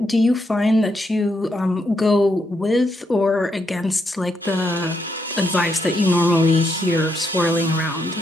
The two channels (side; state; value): both; normal; correlation 0.79